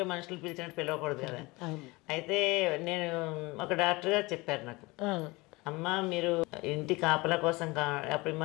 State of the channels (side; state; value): right; quieter; 23.2 dB